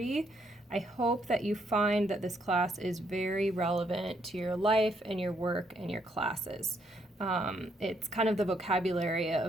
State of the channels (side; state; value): both; normal; correlation 0.73